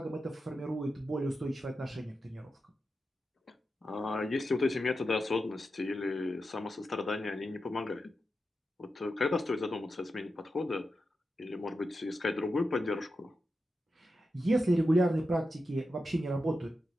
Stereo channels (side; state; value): both; normal; correlation 0.89